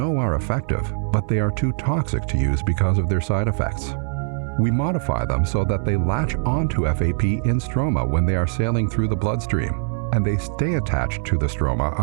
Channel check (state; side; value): silent; left; digital silence